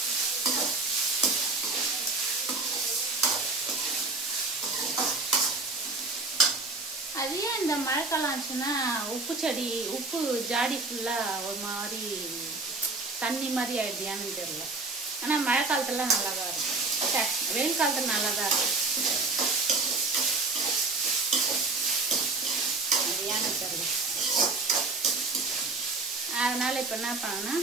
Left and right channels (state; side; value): quieter; left; 3.6 dB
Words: அது ஏன் இந்த மழைக்காலம் ஆச்சுன்னா உப்பு செடி, உப்பு ஜாடி ஃபுல்லாக ஒரு மாதிரி தண்ணி மாதிரி ஆயிடுதியான்னு தெரியல. ஆனால் மழை காலத்துல நல்லா தான் இருக்கும். வெயில் காலத்தில் நல்லா தான் இருக்கும். அது ஏன்னு தெரியல. அதனால் இப்போ என்ன பண்ணேன்னா,